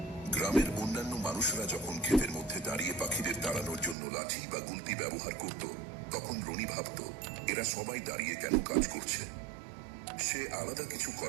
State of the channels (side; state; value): left; drops out; at 4.0 s